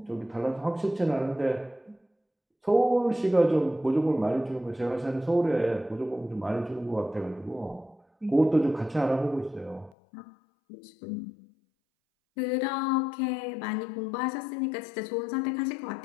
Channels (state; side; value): drops out; right; at 10.0 s